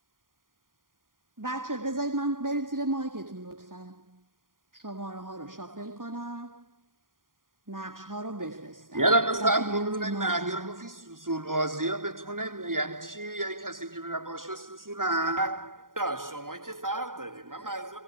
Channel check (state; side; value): late; left; 0.90 ms